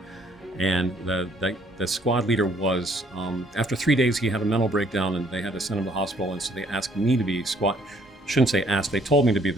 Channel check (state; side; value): normal; both; correlation 0.64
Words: And the squad leader was, after 3 days, he had a mental breakdown and they had to send him to the hospital. And so they asked me to be shouldn't say asked, they told me to be